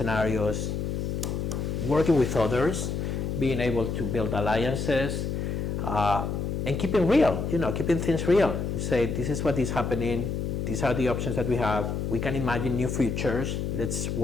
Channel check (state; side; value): noise; left; hum, 2 dB below the sound